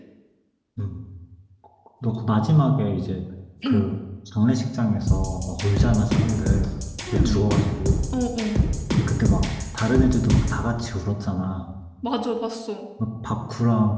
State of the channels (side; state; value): both; identical; correlation 1.00